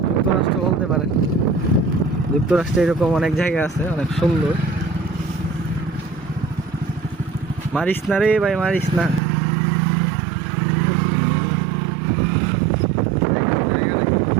যুক্তরাষ্ট্র বলতে পারেন। যুক্তরাষ্ট্রে এরকম অনেক জায়গা আছে, অনেক সুন্দর। মারিস না রে ভাই, মারিস না।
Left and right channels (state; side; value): drops out; left; at 9.2 s